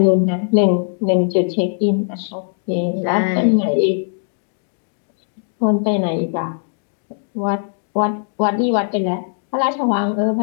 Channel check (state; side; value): silent; right; digital silence